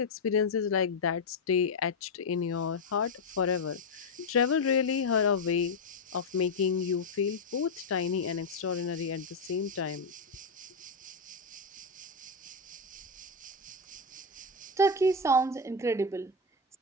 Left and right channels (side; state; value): right; quieter; 3.3 dB